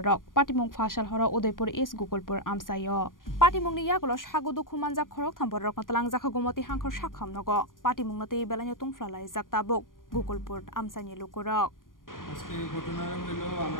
Patimung phasal horo Udaipur East Gukulpur amchaio Patimung ni yagulo sago dukhu manjak khoroktham bororok natalang jakha gomoti hangkhor sakham nogo Patimung nate belanyo tungflalai jaktabuk Gukulpur amchaini lukurok আজকে ঘটনাটা হলো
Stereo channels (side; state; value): right; late; 0.90 ms